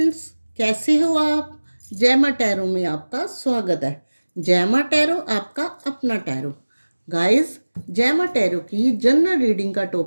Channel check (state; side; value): inverted; both; correlation -1.00